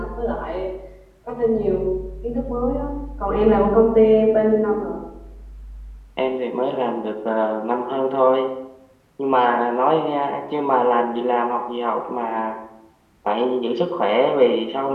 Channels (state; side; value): identical; both; correlation 1.00